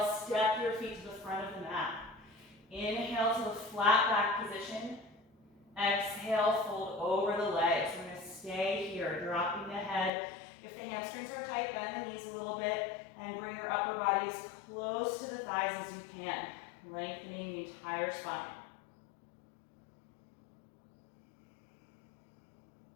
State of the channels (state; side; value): drops out; right; at 10.1 s